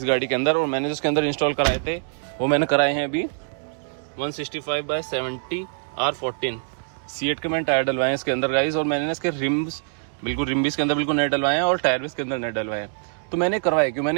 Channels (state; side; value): silent; left; digital silence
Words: गाड़ी के अंदर। और मैंने जिसके अंदर इंस्टॉल कराए थे वो मैंने कराए हैं अभी 165/70 R14 C8 के मैंने टायर डलवाए हैं इसके अंदर गाइस। और मैंने इसके रिम्स बिल्कुल रिम भी इसके अंदर बिल्कुल नए डलवाए हैं, और टायर भी इसके अंदर नए डलवाए हैं। तो मैंने करवाए क्यों,